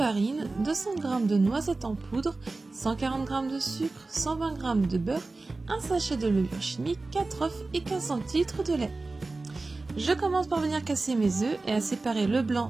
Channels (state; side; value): quieter; left; 3.4 dB